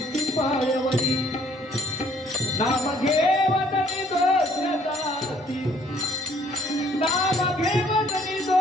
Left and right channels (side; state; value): both; normal; correlation 0.61